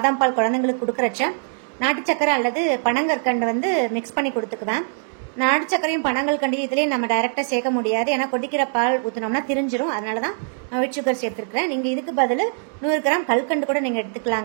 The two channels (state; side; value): silent; left; digital silence